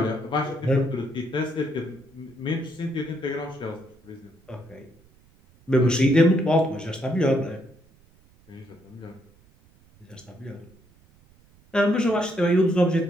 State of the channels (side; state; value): right; noise; rumble, 30 dB below the sound